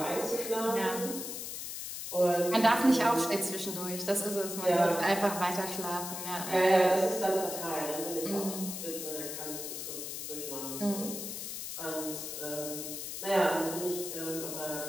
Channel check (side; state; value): left; noise; hiss, 6 dB below the sound